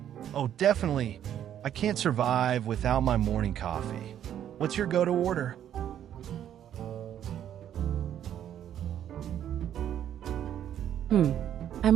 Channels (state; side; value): quieter; left; 10.4 dB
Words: Oh, definitely. I can't survive without my morning coffee. What's your go-to order?